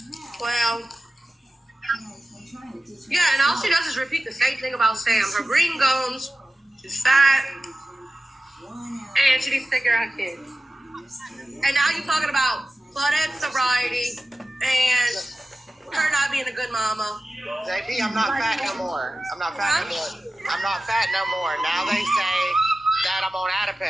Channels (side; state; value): both; normal; correlation 0.94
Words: Well, yeah, and all she does is repeat the same thing about Sam. Her green gums, she's fat, and she needs to take care of her kids. And now you're talking about Claudette sobriety and her not being a good mama. JP, I'm not fat no more. I'm not fat no more. I'm not fat no more. Now they say that I'm on